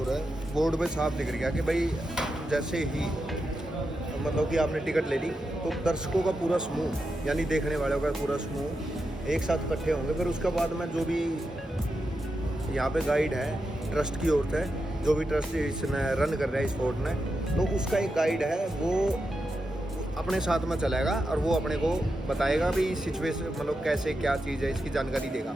है, बोर्ड पे साफ दिख गया कि भाई जैसे ही मतलब कि आपने टिकट ले ली तो दर्शकों का पूरा समूह यानी देखने वालों का पूरा समूह एक साथ इकट्ठे होंगे। फिर उसके बाद में जो भी यहाँ पे गाइड है ट्रस्ट की ओर से, जो भी ट्रस्ट इसने रन कर रहा है इस फोर्ट ने, तो उसका एक गाइड है वो अपने साथ में चलेगा और वो अपने को बताएगा भी सिचुएशन मतलब कैसे क्या चीज़ है, इसकी जानकारी देगा,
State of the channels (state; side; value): normal; both; correlation 0.87